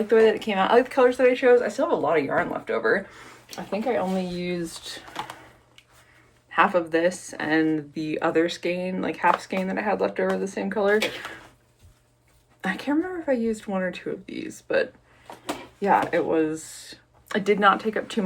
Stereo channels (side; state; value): both; identical; correlation 1.00